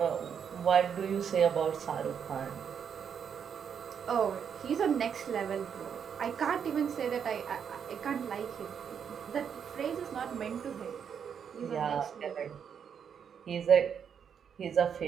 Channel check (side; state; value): left; quieter; 7.5 dB